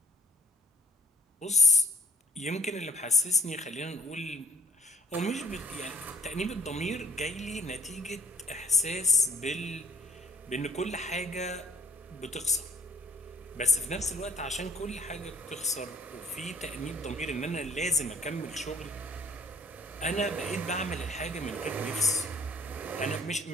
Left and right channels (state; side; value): normal; both; correlation 0.58